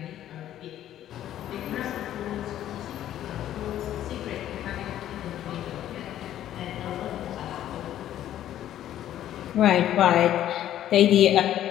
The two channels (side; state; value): right; quieter; 11.9 dB